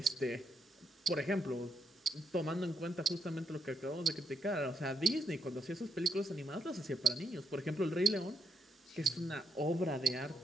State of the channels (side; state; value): both; normal; correlation 0.77